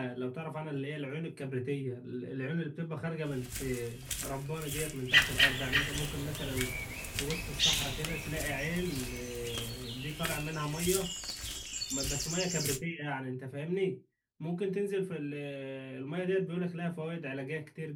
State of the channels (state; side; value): identical; both; correlation 1.00